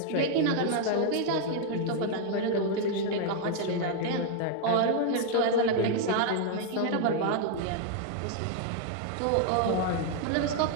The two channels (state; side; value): different; both; correlation 0.00